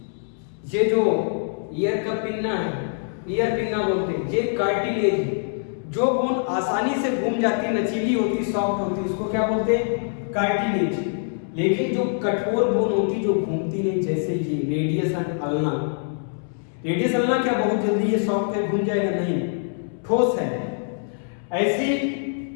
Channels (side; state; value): right; silent; 63 dB below the other